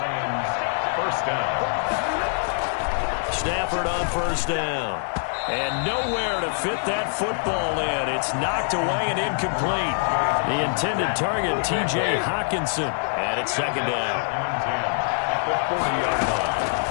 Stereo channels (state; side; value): silent; right; 61 dB below the other